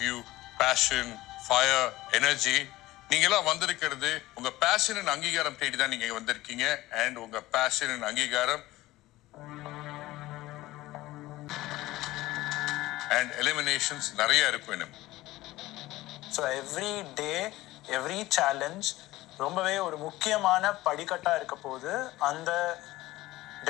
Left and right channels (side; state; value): right; quieter; 17.6 dB